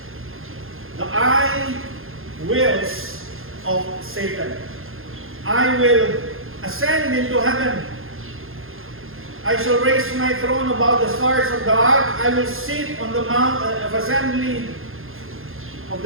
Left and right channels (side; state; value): left; late; 0.60 ms